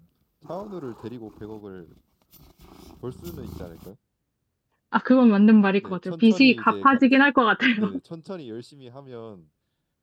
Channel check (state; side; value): identical; both; correlation 1.00